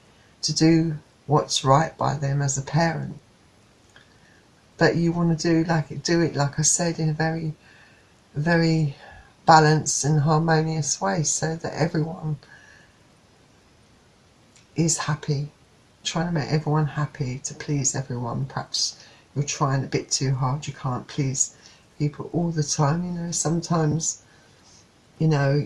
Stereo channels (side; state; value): both; identical; correlation 1.00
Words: to do what's right by them as a parent. But you want to do it, like I said, in a very, very balanced and harmonious way, so that everyone is happy. Trying to make everyone happy, to please everyone. Perhaps you're trying a bit too hard. You can't please people all the time. Sometimes,